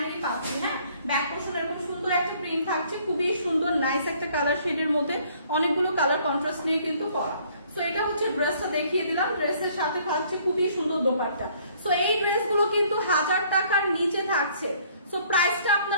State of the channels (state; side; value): inverted; both; correlation -0.60